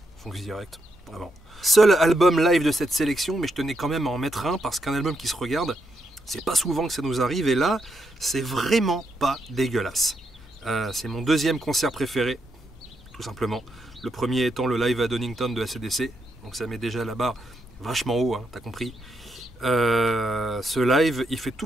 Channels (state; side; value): normal; both; correlation 0.80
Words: Fonce direct, vraiment. Seul album live de cette sélection, mais je tenais quand même à en mettre un parce qu'un album qui se regarde, c'est pas souvent que ça nous arrive. Et là, c'est vraiment pas dégueulasse. C'est mon deuxième concert préféré, tout simplement. Le premier étant le live à Donington de AC/DC. Donc ça met déjà la barre vachement haut, hein, t'as compris. Ce live, il fait